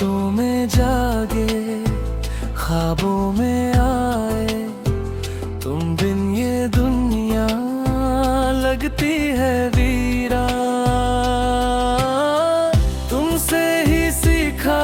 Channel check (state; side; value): identical; both; correlation 1.00